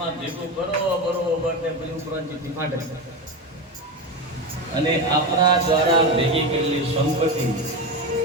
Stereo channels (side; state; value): both; normal; correlation 0.18